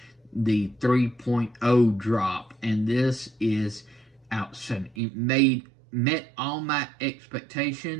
the 3.0 drop, and this is outstanding. It met all my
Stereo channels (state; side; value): drops out; left; at 5.0 s